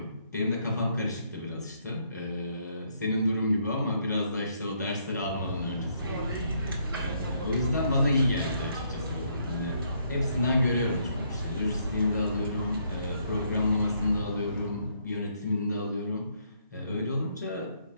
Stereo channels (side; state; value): both; inverted; correlation -0.72